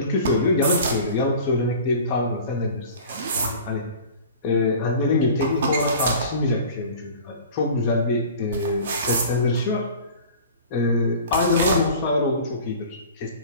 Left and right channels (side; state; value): both; inverted; correlation -0.41